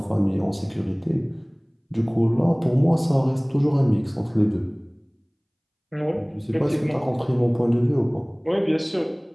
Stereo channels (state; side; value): identical; both; correlation 1.00